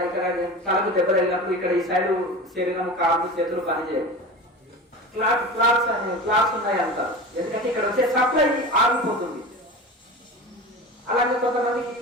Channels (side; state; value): both; normal; correlation 0.31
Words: ఇక్కడ తలకు దెబ్బ తగిలినప్పుడు ఇక్కడ ఈ సైడ్ శరీరం, కాళ్ళు, చేతులు పనిచేయవు. క్లాస్ ఉన్నాయి అంటారు. ఎందుకంటే ఇక్కడ వచ్చే సప్లై ఆగిపోతుంది. అలాగే కొంతమందికి